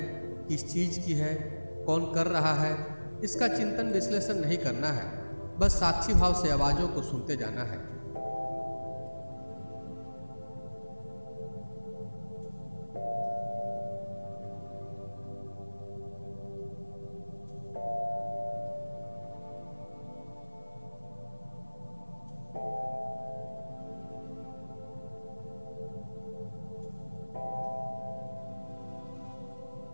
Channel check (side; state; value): both; inverted; correlation -1.00